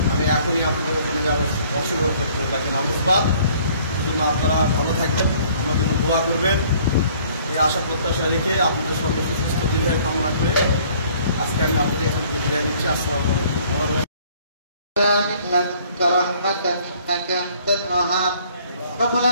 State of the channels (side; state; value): both; inverted; correlation -0.58